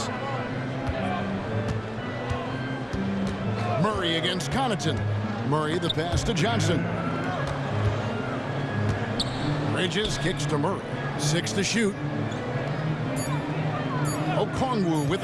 Murray against Connaughton. Murray the pass to Johnson. Bridges kicks to Murray. 6 to shoot. Okongwu with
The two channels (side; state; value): both; identical; correlation 1.00